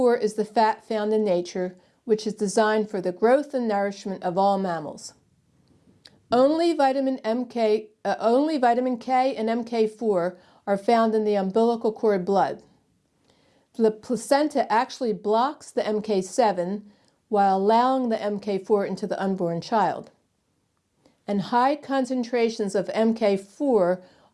is the fat found in nature, which is designed for the growth and nourishment of all mammals. Only vitamin K and MK4 are found in the umbilical cord blood. The placenta actually blocks the MK7 while allowing the MK4 into the unborn child. And high concentrations of MK4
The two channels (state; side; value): identical; both; correlation 1.00